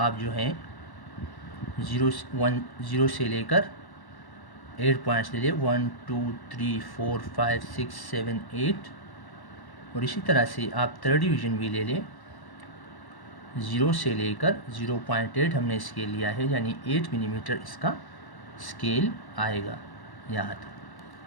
जो हैं 0 से लेकर 8 पॉइंट्स ले लें, 1 2 3 4 5 6 7 8। और इसी तरह से आप थर्ड डिवीज़न भी ले लें। 0 से लेकर 0.8 हमने स्केल लिया है, यानी 8 मिलीमीटर इसका स्केल आएगा यहाँ तक।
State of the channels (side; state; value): right; late; 1.1 ms